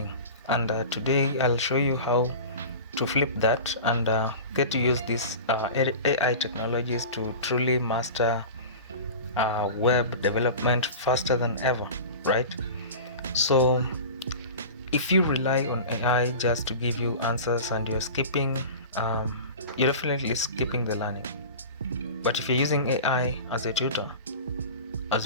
And today I'll show you how to flip that and get to use these AI technologies to truly master web development faster than ever, right? So if you rely on AI just to give you answers and you're definitely skipping the learning. But if you're using AI as a tutor, as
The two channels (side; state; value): both; inverted; correlation -0.34